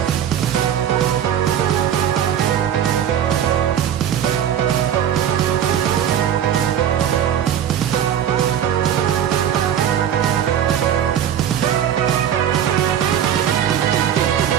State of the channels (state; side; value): quieter; left; 9.7 dB